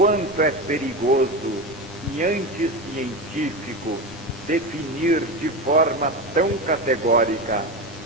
é perigoso e anticientífico definir de forma tão categórica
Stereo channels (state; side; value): normal; both; correlation 0.21